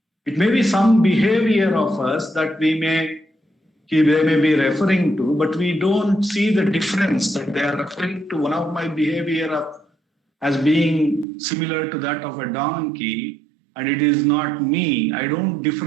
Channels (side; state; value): left; drops out; at 11.2 s